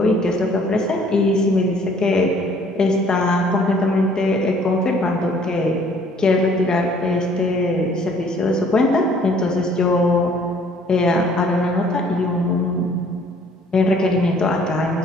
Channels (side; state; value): both; normal; correlation 0.58